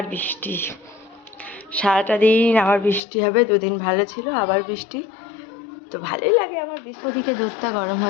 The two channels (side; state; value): right; drops out; at 3.0 s